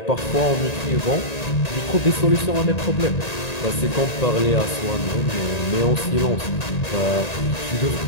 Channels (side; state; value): right; late; 1.9 ms